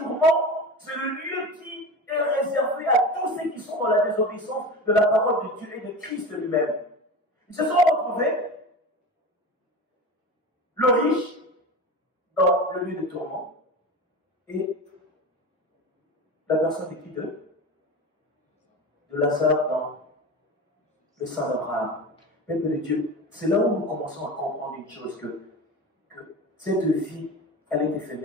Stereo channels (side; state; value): both; normal; correlation 0.29